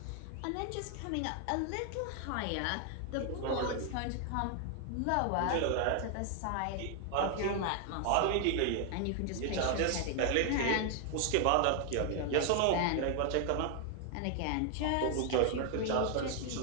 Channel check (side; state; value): both; different; correlation 0.00